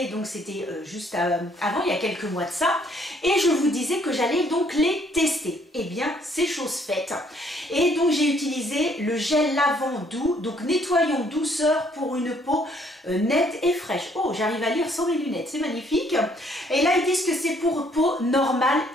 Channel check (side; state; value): both; normal; correlation 0.65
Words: donc c'était juste avant, il y a quelques mois de ça, et je vous disais que j'allais donc les tester. C'est chose faite. Et donc j'ai utilisé le gel lavant doux, donc nettoyant douceur pour une peau nette et fraîche. Oh, j'arrive à lire sans mes lunettes, c'est magnifique. Et là, ils disent que c'est pour peau normale